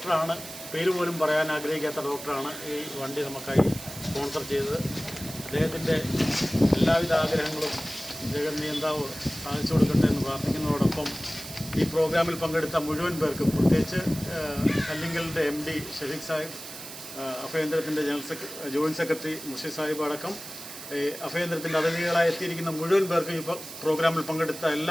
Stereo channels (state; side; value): noise; right; hiss, 12 dB below the sound